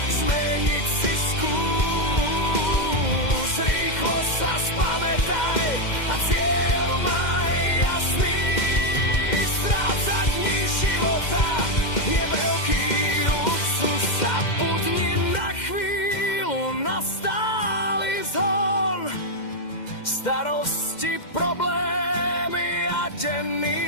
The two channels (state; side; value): late; right; 2.1 ms